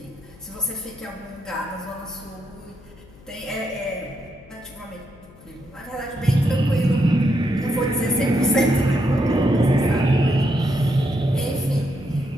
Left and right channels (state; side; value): noise; left; hum, 23 dB below the sound